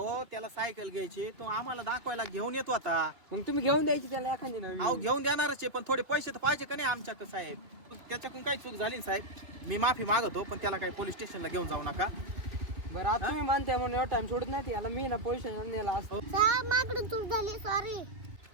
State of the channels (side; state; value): left; late; 2.4 ms